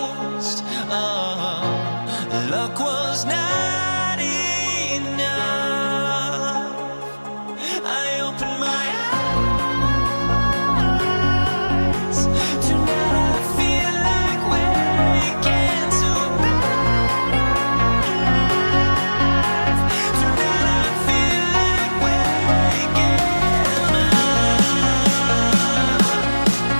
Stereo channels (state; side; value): inverted; both; correlation -1.00